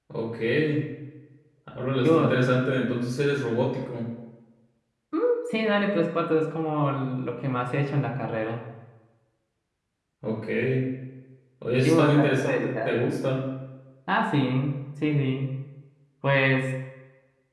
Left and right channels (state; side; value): identical; both; correlation 1.00